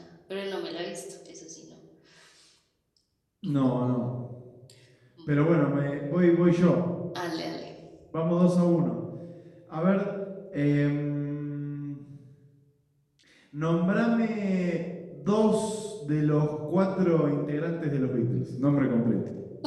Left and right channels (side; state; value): both; identical; correlation 1.00